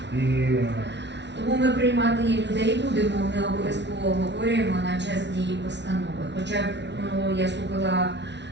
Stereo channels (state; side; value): late; left; 0.51 ms